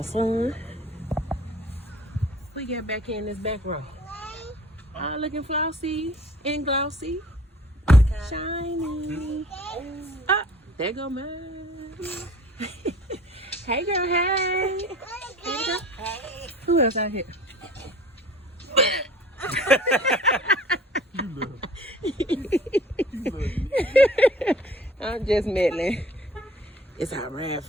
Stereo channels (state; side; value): normal; both; correlation 0.48